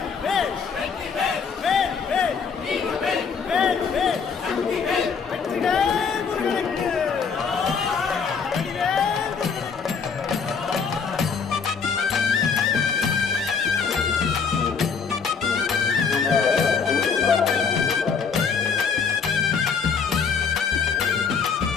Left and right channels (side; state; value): right; quieter; 5.9 dB